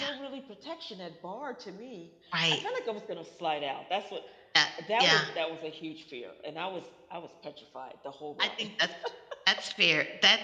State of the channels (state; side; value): identical; both; correlation 1.00